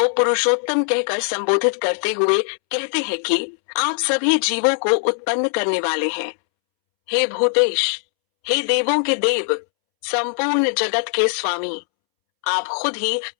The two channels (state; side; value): silent; right; 65 dB below the other